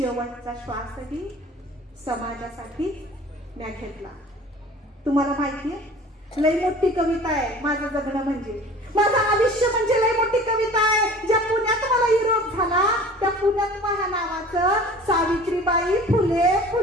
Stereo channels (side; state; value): both; normal; correlation 0.44